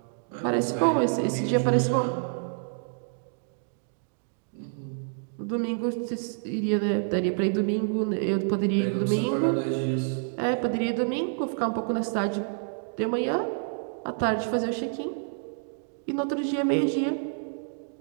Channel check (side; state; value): left; silent; digital silence